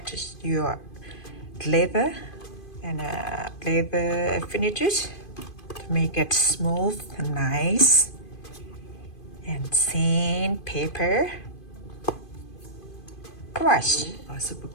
your leather and leather finishes to make it smooth and nice. And sandpaper, brush or super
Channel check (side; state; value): right; late; 2.5 ms